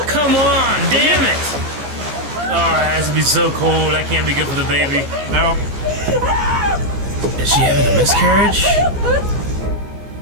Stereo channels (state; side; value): late; left; 14 ms